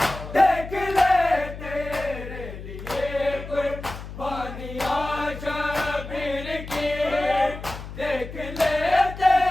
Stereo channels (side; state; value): left; noise; hum, 11 dB below the sound